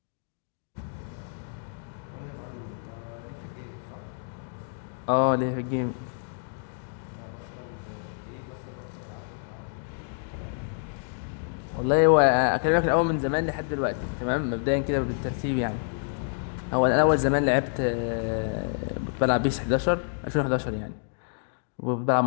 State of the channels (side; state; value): right; silent; digital silence